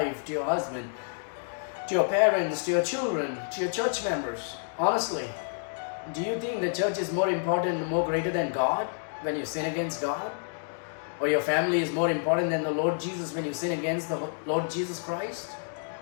to your husband, to your parents, to your children, to your church members. Honestly, do you think the church is more important, more greater than God when you sin against God? Or your family is more important than the Lord Jesus when you sin against the Lord Jesus Christ?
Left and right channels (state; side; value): silent; right; digital silence